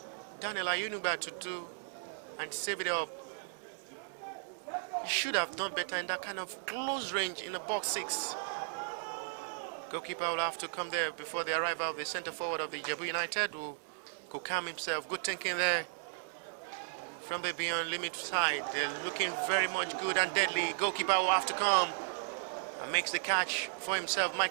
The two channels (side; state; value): left; silent; 54 dB below the other